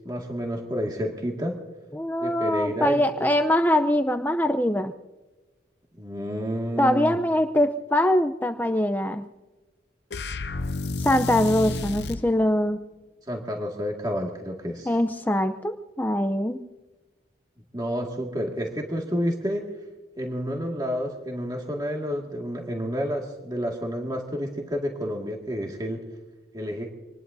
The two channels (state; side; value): normal; both; correlation 0.82